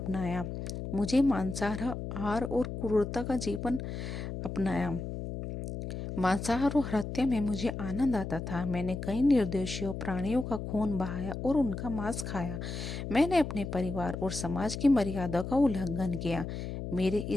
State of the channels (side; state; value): left; noise; hum, 6 dB below the sound